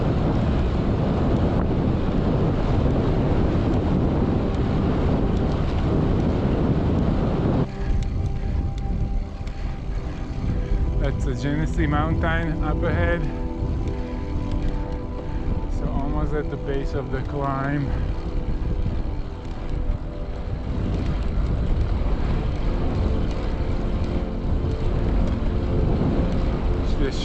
That's the Genesee Mountain up ahead. So almost at the base of the climb. It's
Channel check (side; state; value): both; identical; correlation 1.00